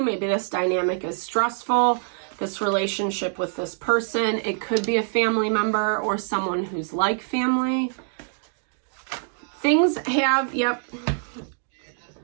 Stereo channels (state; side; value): silent; left; 60 dB below the other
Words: Maybe this dynamic is stressful, this relationship with this person. It could be a family member or someone who's like family. Things have, the